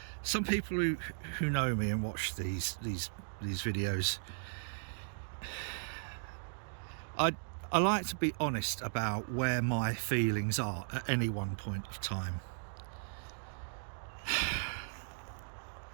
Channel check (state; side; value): silent; left; digital silence